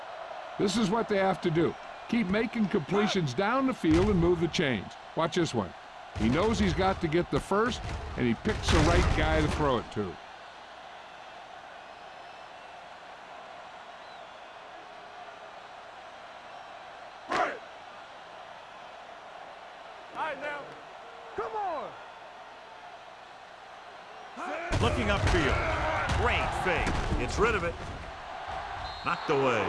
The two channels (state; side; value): identical; both; correlation 1.00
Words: This is what they have to do. Keep making completions down the field and move the chains. Watch this one. He knows he's got to get the first, and he picks the right guy to throw it to. Looking upfield. Great fake. Gets rid of it. Knocked away.